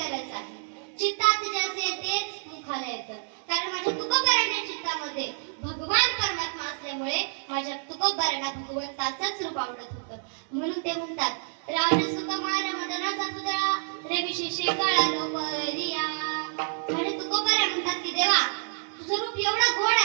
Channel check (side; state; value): left; silent; 59 dB below the other